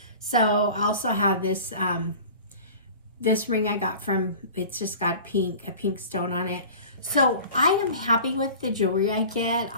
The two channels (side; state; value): both; inverted; correlation -0.40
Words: So I also have this, this ring I got from, it's just got a pink stone on it. So I am happy with the jewelry I get.